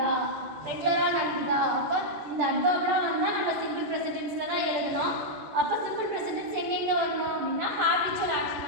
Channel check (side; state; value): left; late; 14 ms